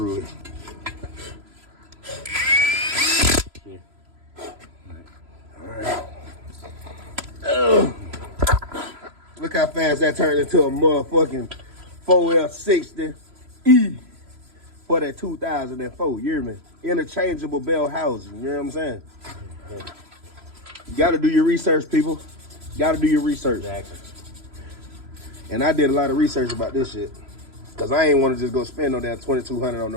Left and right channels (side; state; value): left; late; 3.0 ms